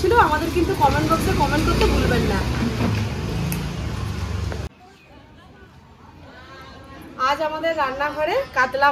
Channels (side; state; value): both; identical; correlation 1.00